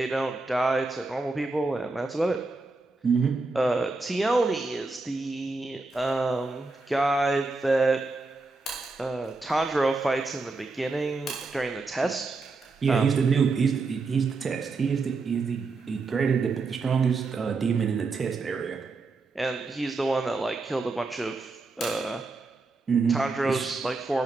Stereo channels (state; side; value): quieter; left; 3.7 dB